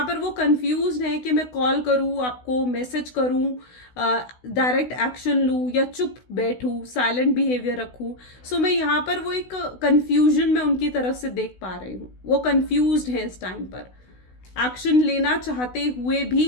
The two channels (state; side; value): late; right; 16 ms